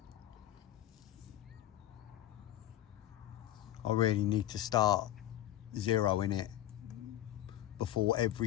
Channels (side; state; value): right; quieter; 12.9 dB